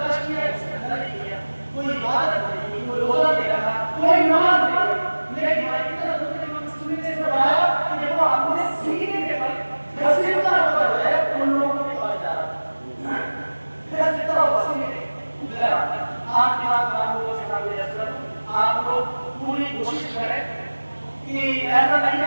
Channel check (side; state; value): both; inverted; correlation -1.00